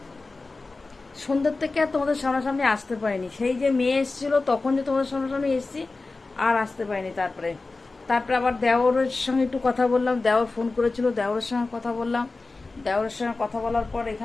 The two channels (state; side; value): quieter; right; 3.6 dB